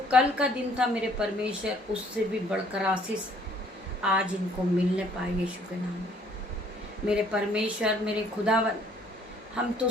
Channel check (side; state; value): both; normal; correlation 0.60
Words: कल का दिन था मेरे परमेश्वर, उससे भी बढ़कर आशीष आज इनको मिलने पाए यीशु के नाम में। मेरे परमेश्वर, मेरे खुदावन, हम तो